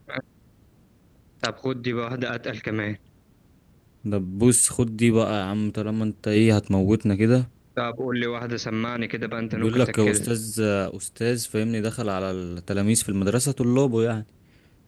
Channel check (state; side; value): identical; both; correlation 1.00